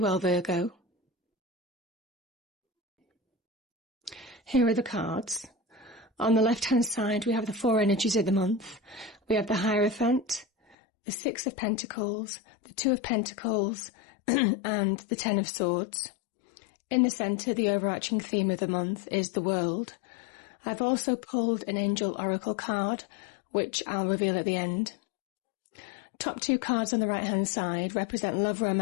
well, Virgo. Here are the cards. On the left-hand side we have the four energies of the month. We have the Hierophant, the Six of Pentacles, the Two of Pentacles and the Ten of Swords. In the centre, the overarching theme of the month is the world. I've also pulled an angel oracle card, which I'll reveal at the end. Top two cards on the right-hand side represent love,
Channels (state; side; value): drops out; right; at 10.8 s